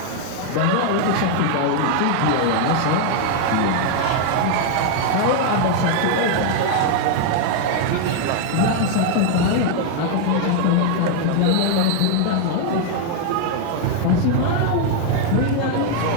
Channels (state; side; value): different; both; correlation 0.00